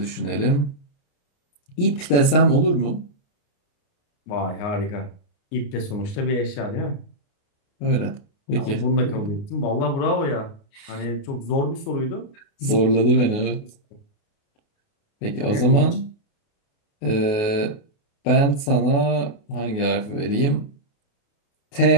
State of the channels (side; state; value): right; late; 28 ms